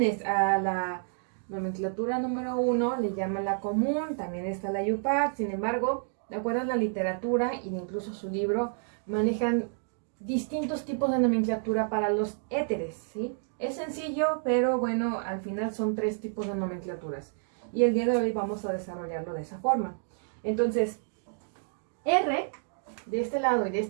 a la nomenclatura número 1 le llaman la común, también está la IUPAC. Sin embargo, de acuerdo a la literatura e incluso su libro, manejan distintos tipos de nomenclatura para los éteres, ¿sí? Es sencillo, pero bueno, al final son tres tipos de nomenclaturas. Y el día de hoy vamos a desarrollarlo de esa forma. Entonces, R de este lado y de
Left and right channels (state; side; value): silent; left; digital silence